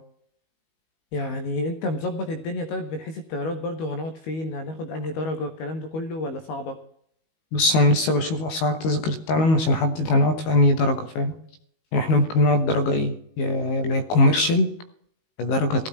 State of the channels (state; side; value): late; right; 19 ms